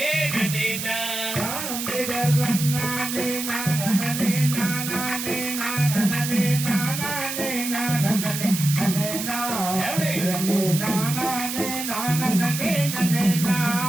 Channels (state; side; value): noise; right; hiss, 5 dB below the sound